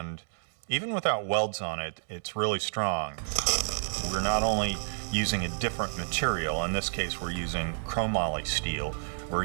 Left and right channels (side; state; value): left; silent; digital silence